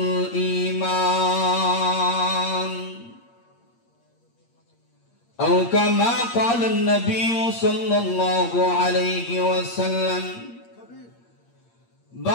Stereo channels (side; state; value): right; late; 8.6 ms